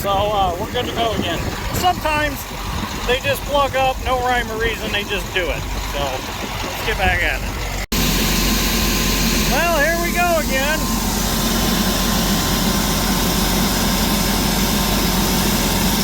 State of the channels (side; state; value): both; identical; correlation 1.00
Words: we're good to go again. Sometimes they just plug up, no rhyme or reason, they just do it. So let's get back at it. Well, here we go again.